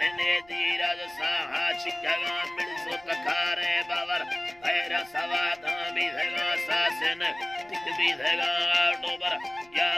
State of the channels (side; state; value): right; noise; rumble, 29 dB below the sound